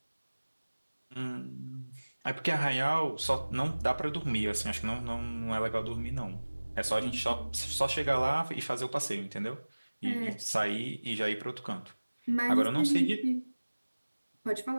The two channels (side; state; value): both; inverted; correlation -1.00